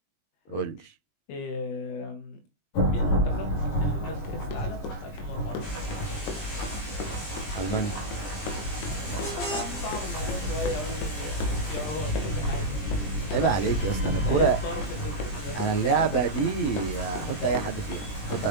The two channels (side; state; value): right; late; 20 ms